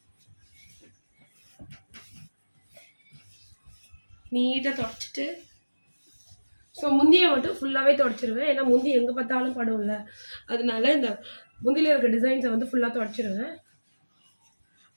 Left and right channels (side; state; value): both; inverted; correlation -1.00